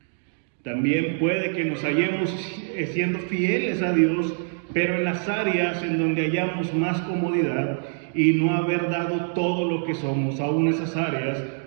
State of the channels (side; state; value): left; silent; 60 dB below the other